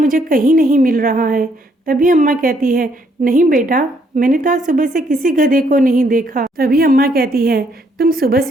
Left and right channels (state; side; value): normal; both; correlation 0.70